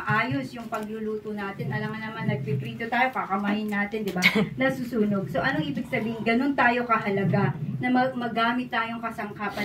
yung pagluluto natin. Alam nga naman, nagpiprito tayo, kakamahin natin, di ba? Nasusunog. So, anong ibig sabihin? Ganun tayo kahalaga na magamit tayong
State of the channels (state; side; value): identical; both; correlation 1.00